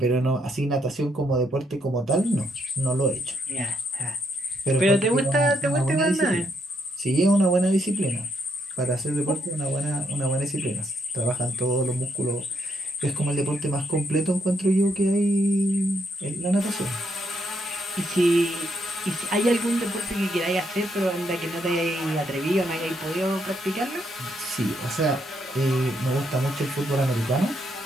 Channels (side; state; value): both; normal; correlation 0.76